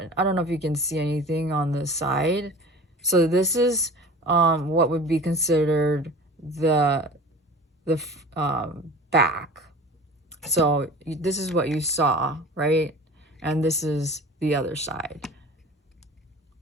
don't know if you can see anything on the side. So this is what would be considered the back. So this is what you saw, right? And this is the other side.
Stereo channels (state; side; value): normal; both; correlation 0.39